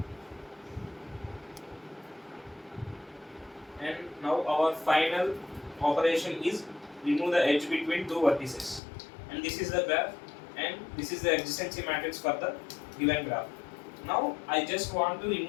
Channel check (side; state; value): right; drops out; at 8.8 s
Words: And now our final operation is remove the edge between two vertices. And this is the graph, and this is the adjacency matrix for the given graph. Now I just want to